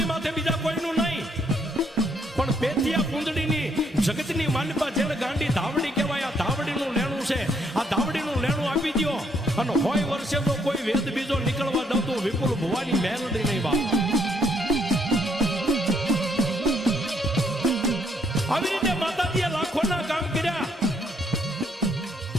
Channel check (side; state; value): both; normal; correlation 0.71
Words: માથે બીજા કોઈનું નહીં, પણ પેથિયા કુંદડીની જગતની માલિપા જેને ગાંડી ધાવડી કહેવાય, આ ધાવડીનું લેણું છે. આ ધાવડીનું લેણું આપી દો અને 100 વર્ષે તો કોઈ વેદ બીજો નીકળવા દઉં તો વિપુલ ભુવાની મેલડી નહીં બાપ. આવી રીતે માતાજીએ લાખોના કામ કર્યા.